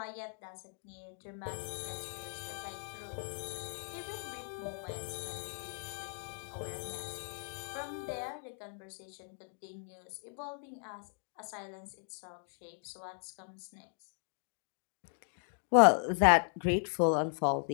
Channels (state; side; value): silent; right; 53 dB below the other